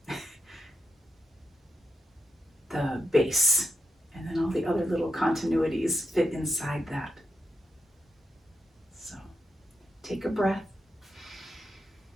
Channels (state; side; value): normal; both; correlation 0.84